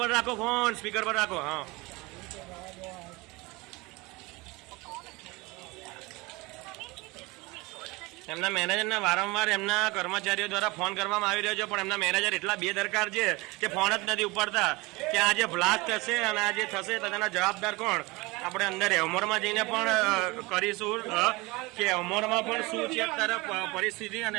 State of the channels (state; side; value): quieter; left; 23.6 dB